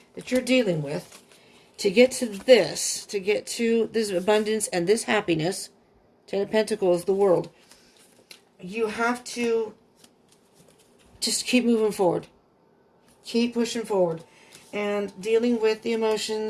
that you're dealing with, to get to this, to get to this abundance and this happiness, Ten of Pentacles, the world, you have to just keep moving forward. Keep pushing forward. And dealing with the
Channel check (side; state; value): both; identical; correlation 1.00